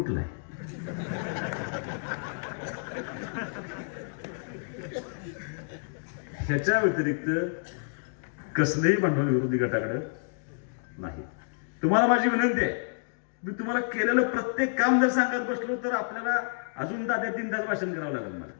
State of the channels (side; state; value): right; silent; digital silence